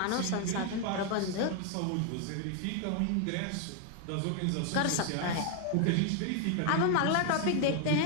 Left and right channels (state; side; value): different; both; correlation 0.00